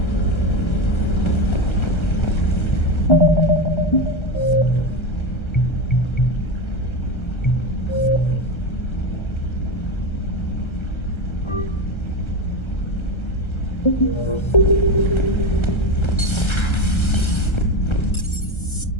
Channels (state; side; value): late; right; 1.3 ms